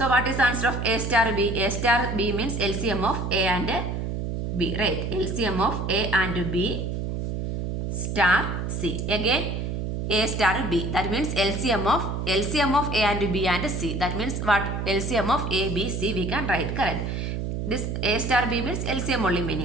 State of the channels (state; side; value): noise; right; hum, 3 dB below the sound